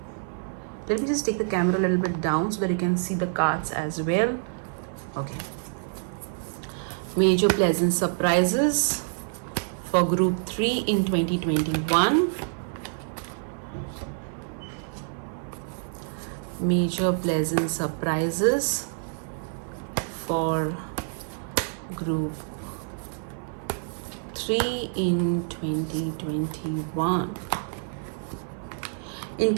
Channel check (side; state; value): left; silent; 60 dB below the other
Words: Let me just take the camera a little bit down so that you can see the cards as well. Okay. Major pleasant surprises for group 3 in 2021. Major pleasant surprises for group 3 in 2021. In